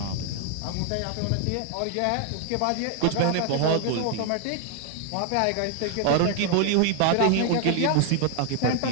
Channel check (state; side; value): different; both; correlation 0.00